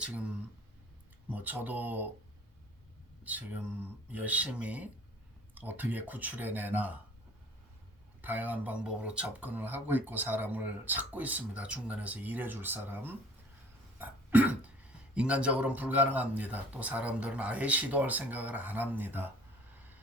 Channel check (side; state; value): both; normal; correlation 0.51